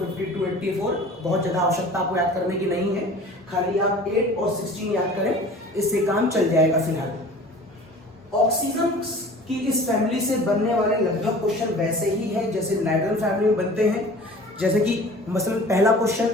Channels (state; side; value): normal; both; correlation 0.43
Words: 52, 84 बहुत ज्यादा आवश्यकता आपको याद करने की नहीं है, खाली आप 8 और 16 याद करें, इससे काम चल जाएगा। फिलहाल ऑक्सीजन की इस फैमिली से बनने वाले लगभग क्वेश्चन वैसे ही हैं जैसे नाइट्रोजन फैमिली में बनते हैं। जैसे कि मसलन पहला